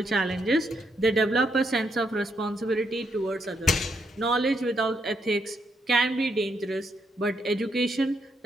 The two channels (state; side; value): normal; both; correlation 0.77